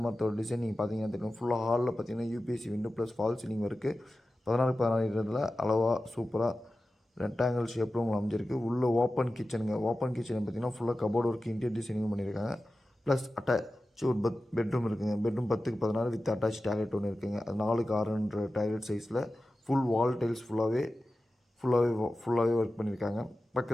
மரத்தோட டிசைன் நீங்கள் பார்த்தீங்கன்னா தெரியும். ஃபுல்லாக ஹாலில் பார்த்தீங்கன்னா UPSC window plus fall ceiling இருக்குது. 16x16 அளவாக சூப்பராக ரெக்டாங்கிள் ஷேப்பில் உங்களுக்கு அமைஞ்சிருக்கு. உள்ளே ஓப்பன் கிச்சனுங்க. ஓப்பன் கிச்சன் பார்த்திங்கன்னா ஃபுல்லாக கபோர்டு ஒர்க், இன்டீரியர் டிசைனிங் பண்ணியிருக்காங்க. ப்ளஸ் அட்டாச் ஒரு பெட்ரூம் இருக்குங்க. Bedroom 10x16 with attach toilet ஒன்று இருக்குங்க. அது 4x6 டாய்லெட் சைஸில் ஃபுல் வால் டைல்ஸ் ஃபுல்லாகவே ஒர்க் பண்ணியிருக்காங்க.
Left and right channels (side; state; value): both; normal; correlation 0.94